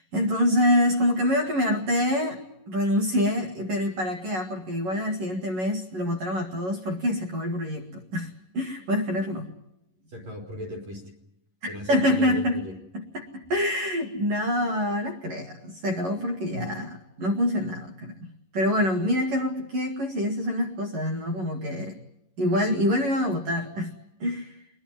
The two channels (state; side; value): late; left; 11 ms